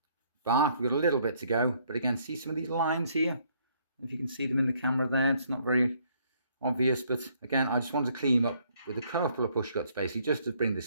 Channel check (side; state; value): both; inverted; correlation -0.66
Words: bark. We've got a little bit to go, but again, see some of these lines here? If you can see them in the camera there, it's not very obvious, but again, I just wanted to clean them up with a couple of push cuts, basically, just to bring